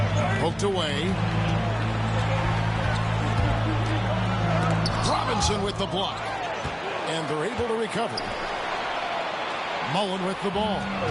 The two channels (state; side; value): identical; both; correlation 1.00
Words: Poked away. Robinson with the block. And they're able to recover. Mullen with the ball.